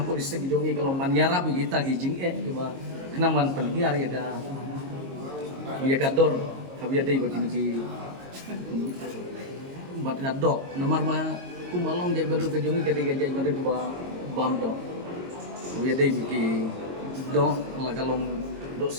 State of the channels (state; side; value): late; left; 22 ms